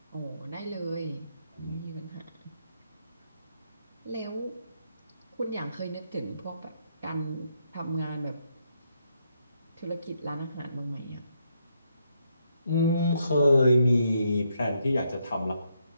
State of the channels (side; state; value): both; inverted; correlation -0.77